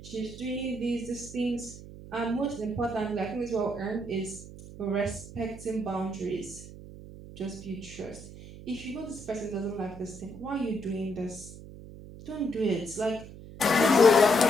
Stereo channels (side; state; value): right; noise; hum, 15 dB below the sound